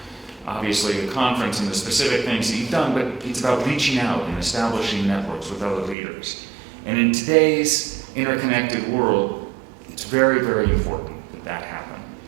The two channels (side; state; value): left; drops out; at 6.0 s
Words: obviously, the conference and the specific things that you've done, but it's about reaching out and establishing networks with other leaders. And in today's interconnected world, it's very, very important that that happen.